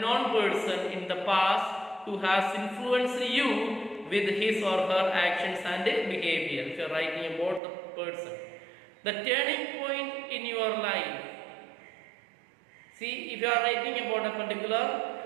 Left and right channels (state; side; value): drops out; left; at 7.6 s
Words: person in the past who has influenced you with his or her actions and behavior. If you are writing about the person, the turning point in your life. See, if you are writing about a particular